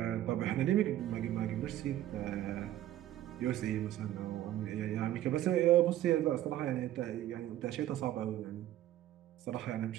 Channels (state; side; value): quieter; left; 13.2 dB